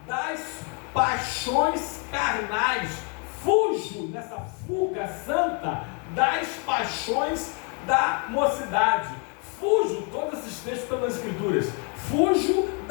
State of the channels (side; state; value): right; quieter; 37.1 dB